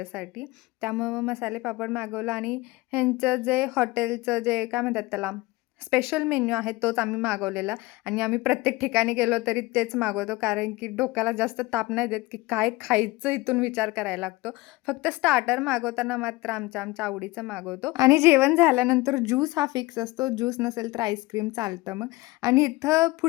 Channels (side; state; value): right; quieter; 21.0 dB